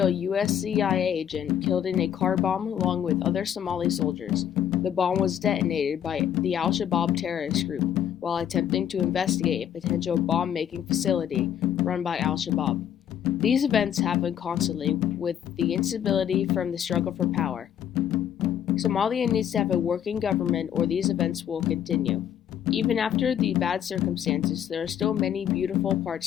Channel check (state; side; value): quieter; right; 9.8 dB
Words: US CIA agent killed in a car bomb along with other Somali soldiers. The bomb was detonated by the Al-Shabaab terrorist group while attempting to investigate a potential bomb-making facility run by Al-Shabaab. These events happen constantly with the instability from the struggle for power. Somalia needs to have a working government or these events will continue. Even after the bad circumstances, there are still many beautiful